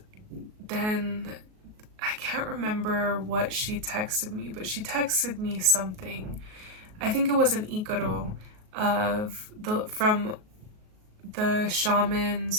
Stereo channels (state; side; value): late; left; 38 ms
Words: then I can't remember what she texted me, but she texted me something. I think it was an ikaro from the